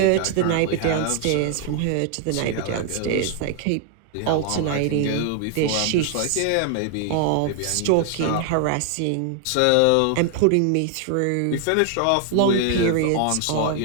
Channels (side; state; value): both; different; correlation 0.00